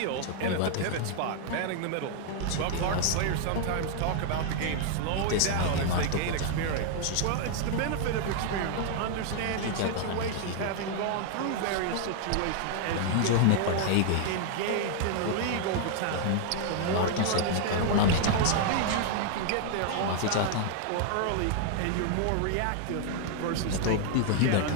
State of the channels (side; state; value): both; different; correlation 0.00